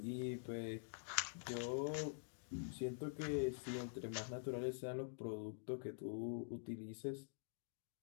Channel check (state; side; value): silent; right; digital silence